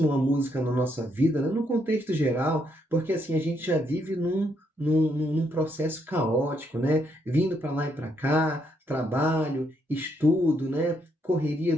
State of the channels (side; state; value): both; normal; correlation 0.75